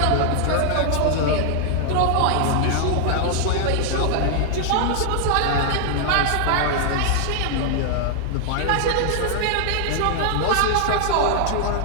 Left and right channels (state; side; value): different; both; correlation -0.01